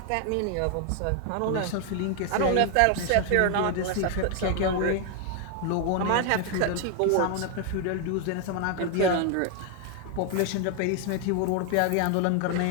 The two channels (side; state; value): both; different; correlation 0.00